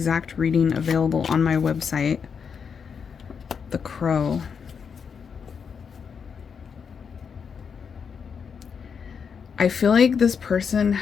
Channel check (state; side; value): quieter; right; 6.4 dB